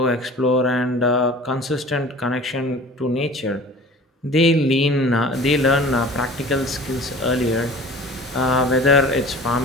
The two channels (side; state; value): both; normal; correlation 0.43